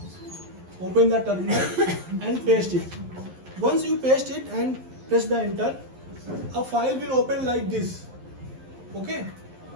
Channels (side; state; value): left; late; 11 ms